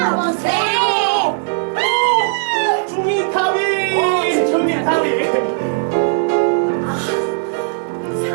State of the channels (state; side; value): silent; left; 68 dB below the other